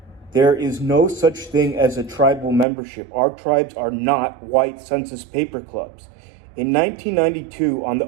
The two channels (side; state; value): left; drops out; at 2.7 s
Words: There is no such thing as a tribal membership. Our tribes are not white census paper clubs. In 1992, on the